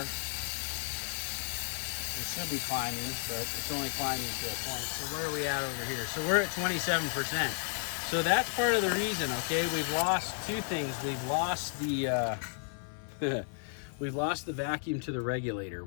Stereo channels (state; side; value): silent; right; 56 dB below the other